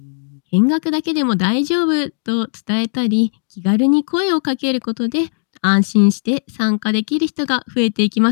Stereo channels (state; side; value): silent; right; digital silence